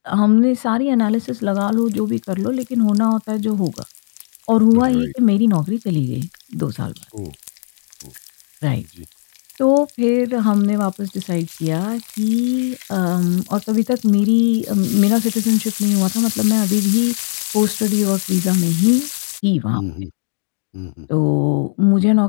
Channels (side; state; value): right; silent; digital silence